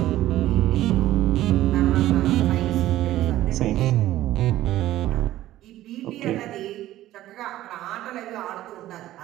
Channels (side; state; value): left; quieter; 14.5 dB